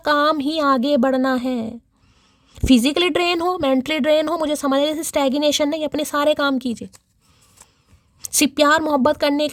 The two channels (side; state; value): both; identical; correlation 1.00